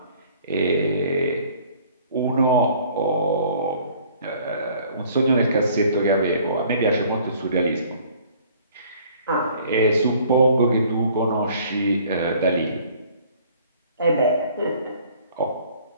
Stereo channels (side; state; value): both; inverted; correlation -0.55